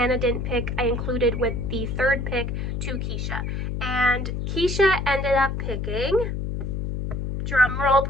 didn't pick, I included with the third pick to Keisha. And Keisha ended up picking, drum roll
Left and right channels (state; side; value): noise; left; hum, 3 dB below the sound